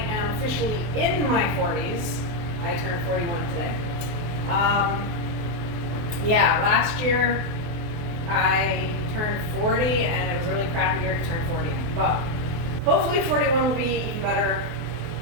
officially in my 40s. I turned 41 today. Last year I turned 40 and it was a really crappy year to turn 40. But hopefully 41 will be even better.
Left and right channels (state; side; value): late; left; 24 ms